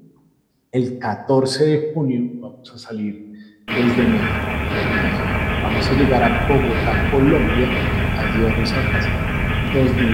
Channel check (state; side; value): identical; both; correlation 1.00